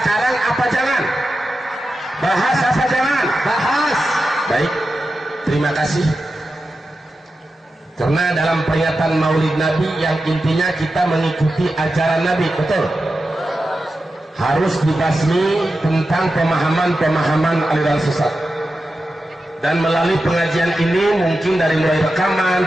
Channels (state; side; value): normal; both; correlation 0.91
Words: apa jangan? Bahas apa jangan? Bahas. Baik, terima kasih. Karena dalam peringatan Maulid Nabi yang intinya kita mengikuti ajaran Nabi, betul? Harus dibasmi tentang pemahaman-pemahaman aliran sesat. Dan melalui pengajian ini, mungkin dari mulai rekaman,